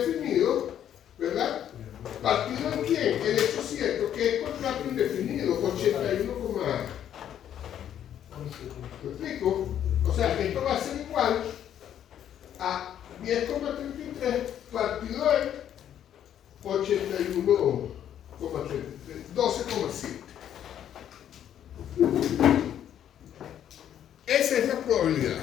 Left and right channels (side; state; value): right; quieter; 10.2 dB